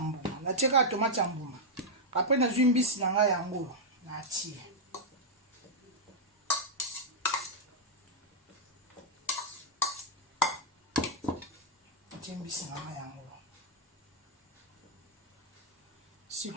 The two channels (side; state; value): both; normal; correlation -0.04